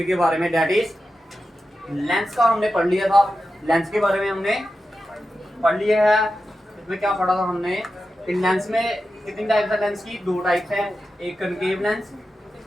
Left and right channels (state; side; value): normal; both; correlation 0.91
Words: के बारे में, डेट इज लेंस का हमने पढ़ लिया था। लेंस के बारे में हमने पढ़ लिया है। इसमें क्या पढ़ा था हमने कि लेंस में कितनी टाइप्स है? लेंस की दो टाइप्स है, एक concave lens,